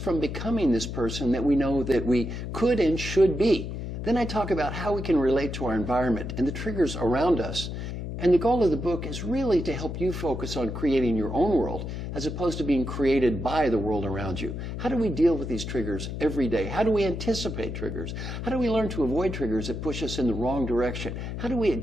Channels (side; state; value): left; noise; hum, 6 dB below the sound